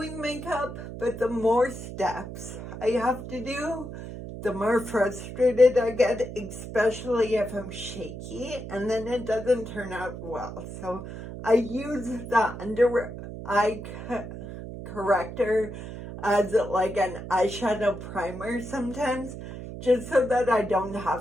makeup, but the more steps I have to do, the more frustrated I get, especially if I'm shaky, and then it doesn't turn out well. So I use the under eye corrector as like an eyeshadow primer sometimes, just so that I don't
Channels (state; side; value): noise; right; hum, 10 dB below the sound